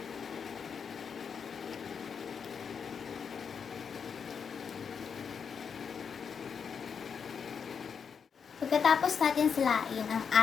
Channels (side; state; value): right; quieter; 6.5 dB